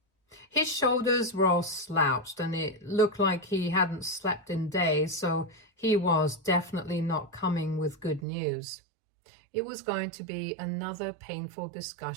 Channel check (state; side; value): drops out; left; at 8.2 s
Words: His shoulders were all slouched and it looked like he hadn't slept in days, so he was definitely not coming with good news. It was going to be another painful